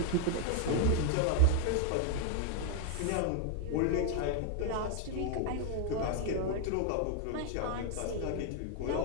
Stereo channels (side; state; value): both; different; correlation 0.00